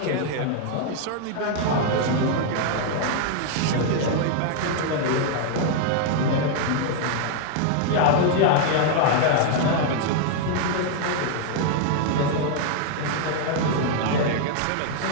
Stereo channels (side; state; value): both; different; correlation 0.00